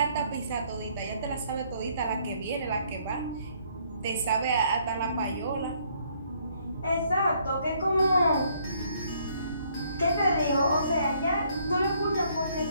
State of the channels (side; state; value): both; inverted; correlation -0.66